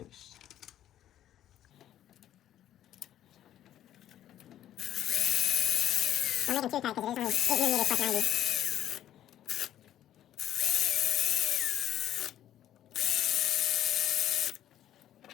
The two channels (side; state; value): right; quieter; 11.8 dB